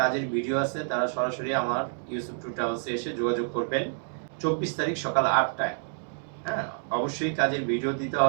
ভিডিও আছে তারা সরাসরি আমার ইউসুফ ট্যুর ট্রাভেলসে এসে যোগাযোগ করবেন ২৪ তারিখ সকাল ৮টায়। হ্যাঁ, অবশ্যই কাজের ভিডিও দিতে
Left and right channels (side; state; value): left; silent; digital silence